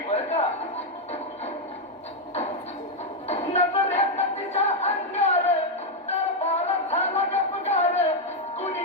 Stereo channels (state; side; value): normal; both; correlation 0.02